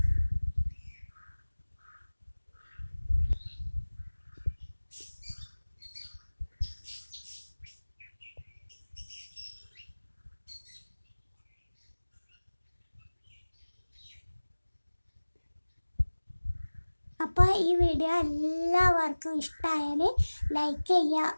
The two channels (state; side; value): inverted; both; correlation -1.00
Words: അപ്പോൾ ഈ വീഡിയോ എല്ലാവർക്കും ഇഷ്ടമായാൽ ലൈക്ക് ചെയ്യുക,